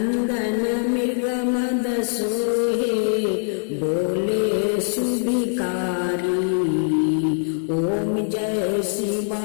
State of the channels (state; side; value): silent; right; digital silence